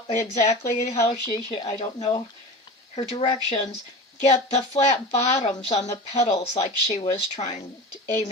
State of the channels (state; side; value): normal; both; correlation 0.32